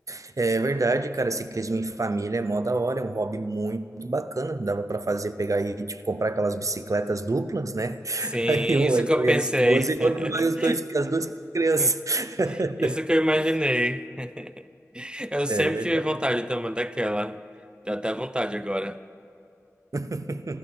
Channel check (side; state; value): both; normal; correlation 0.82